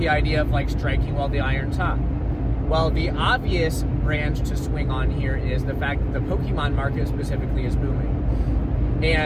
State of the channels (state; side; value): identical; both; correlation 1.00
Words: idea of striking while the iron's hot. Well, the obvious branch to swing on here is the fact that the Pokemon market specifically is booming.